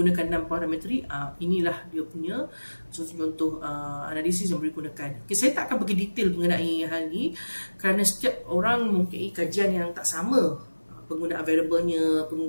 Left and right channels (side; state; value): both; inverted; correlation -1.00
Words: 6 parametrik, inilah dia punya contoh analisis yang boleh digunakan. Okey, saya tak akan pergi detail mengenai hal ni kerana setiap orang mempunyai kajian yang tak sama, penggunaan variabelnya,